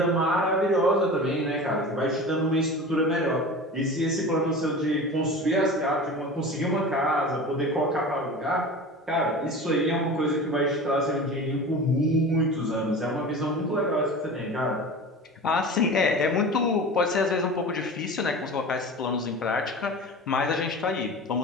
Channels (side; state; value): both; normal; correlation 0.34